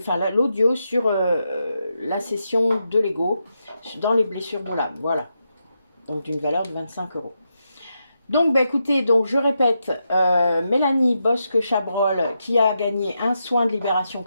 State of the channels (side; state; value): both; inverted; correlation -0.85